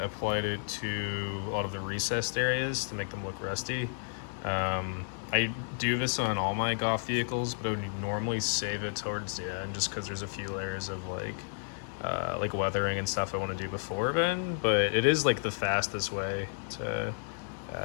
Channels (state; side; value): silent; right; digital silence